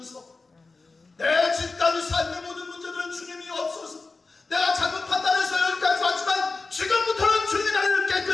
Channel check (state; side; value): quieter; right; 3.9 dB